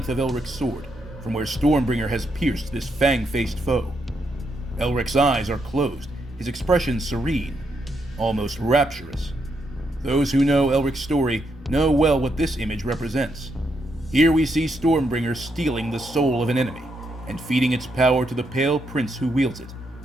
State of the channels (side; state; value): both; normal; correlation 0.79